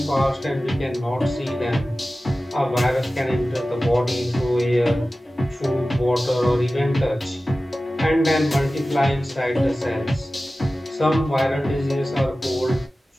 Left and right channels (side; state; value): both; normal; correlation 0.96